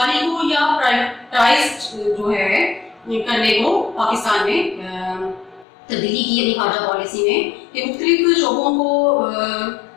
को या प्राइवेटाइज्ड जो है करने को पाकिस्तान ने तब्दीली की अपनी खारजा पॉलिसी में कि मुख्तलिफ शोबों को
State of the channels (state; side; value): drops out; right; at 5.7 s